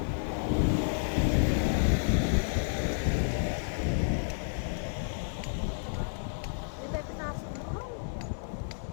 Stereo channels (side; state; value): right; silent; digital silence